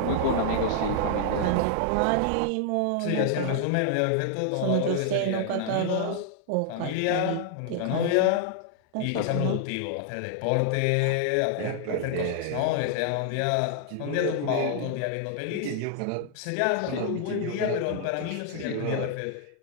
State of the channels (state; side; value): different; both; correlation 0.00